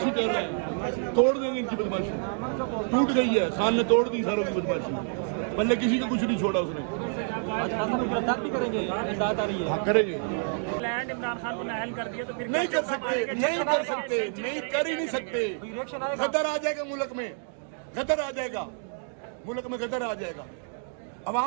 कर रहे हैं, तोड़ देंगे इनकी बदमाशी। टूट गई है, खान ने तोड़ दी सारों की बदमाशी। पहले किसी को कुछ नहीं छोड़ा उसने। आज खान साहब गिरफ्तार भी करेंगे, इमदाद आ रही है। हाँ करेंगे। लैंड इमरान खान को नाअहल कर दिया तो फिर नहीं कर सकते, नहीं कर सकते, नहीं कर ही नहीं सकते। रिएक्शन आएगा। गदर आ जाएगा मुल्क में, गदर आ जाएगा मुल्क में, गदर आ जाएगा।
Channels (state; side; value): silent; left; 56 dB below the other